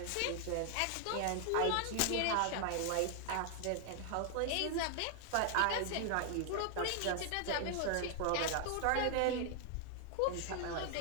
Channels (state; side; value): different; both; correlation 0.00